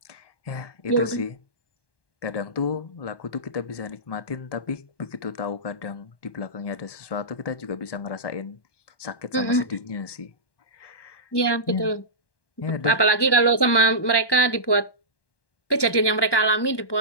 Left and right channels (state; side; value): late; right; 1.1 ms